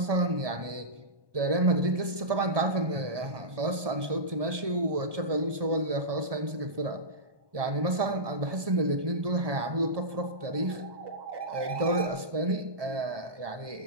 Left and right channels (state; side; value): late; left; 1.7 ms